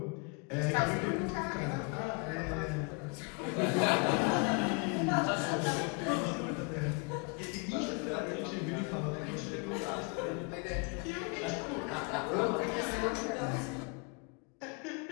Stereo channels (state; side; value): quieter; right; 33.3 dB